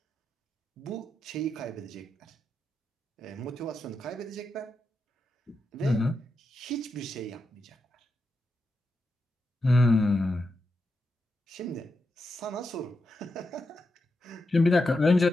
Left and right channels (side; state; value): both; normal; correlation 0.86